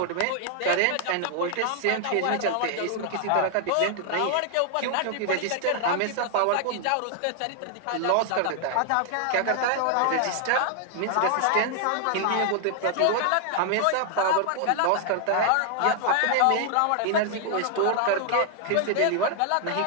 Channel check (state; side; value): different; both; correlation 0.00